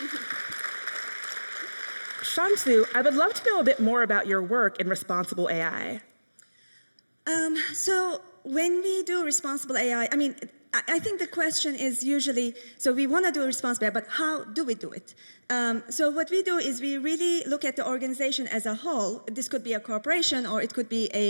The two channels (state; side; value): inverted; both; correlation -1.00